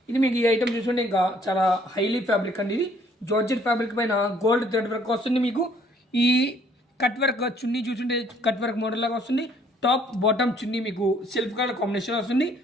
ఇది మీకు ఈ ఐటమ్ చూసుకుంటే ఇంకా చాలా హైలీ ఫ్యాబ్రిక్ అండి. ఇది జార్జెట్ ఫ్యాబ్రిక్ పైన గోల్డ్ థ్రెడ్ వర్క్ వస్తుంది. మీకు ఈ కట్ వర్క్ చున్నీ చూసుంటే కట్ వర్క్ మోడల్ లాగా వస్తుంది. టాప్ బాటమ్ చున్నీ మీకు సెల్ఫ్ కలర్ కాంబినేషన్ వస్తుంది.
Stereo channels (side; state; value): both; normal; correlation 0.62